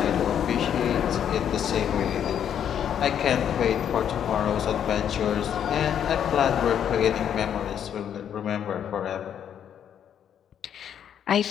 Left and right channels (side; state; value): right; quieter; 9.1 dB